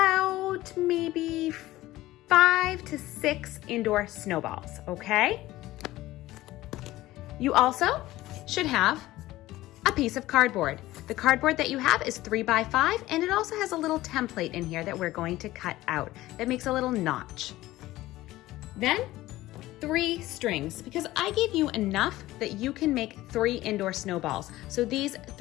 maybe 5 to 6 indoor snowballs, okay? You also should have a piece of cardboard. The cardboard that you have is 3 by 5, and it also has a little template in here that we're going to cut out that makes a little notch. Then 3 strings, because I gave you enough that you can make 3 indoor snowballs. So these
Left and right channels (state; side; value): quieter; right; 16.8 dB